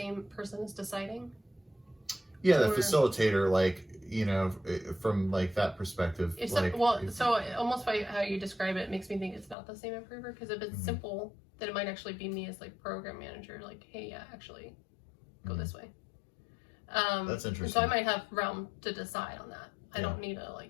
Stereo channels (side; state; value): right; drops out; at 9.6 s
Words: person is deciding? Yeah, the facilitator, like, from like that perspective. So almost by how you describe it makes me think it's not the same improver, because if it's simple, then it might actually be me as like program manager, like, hey, yeah, actually go this way. That's interesting. So I might have realm to decide on that. I don't need to